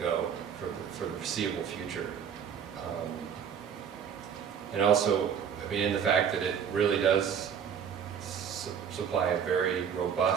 for the foreseeable future. And also, in the fact that it really does supply a very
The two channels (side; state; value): left; quieter; 7.8 dB